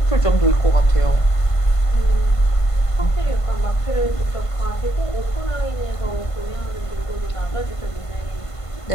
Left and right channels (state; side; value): late; right; 1.5 ms